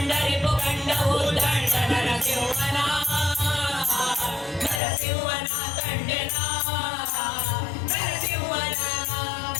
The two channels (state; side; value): drops out; right; at 4.8 s